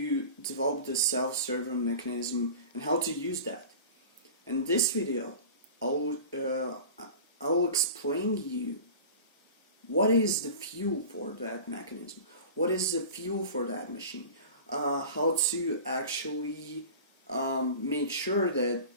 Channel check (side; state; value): both; inverted; correlation -0.37